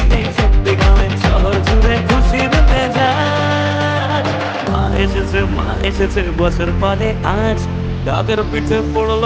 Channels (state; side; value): identical; both; correlation 1.00